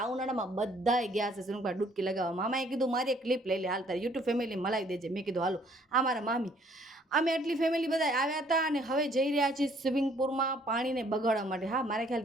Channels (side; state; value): both; normal; correlation 0.62